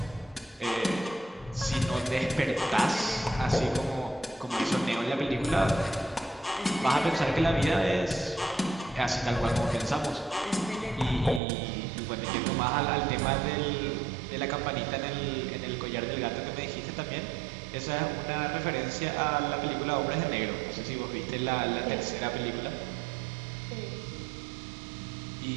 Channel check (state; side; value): drops out; left; at 11.4 s